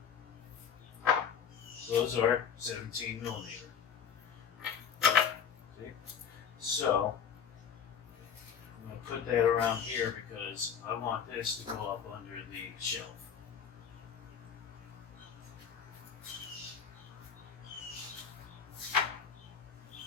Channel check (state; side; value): quieter; right; 7.4 dB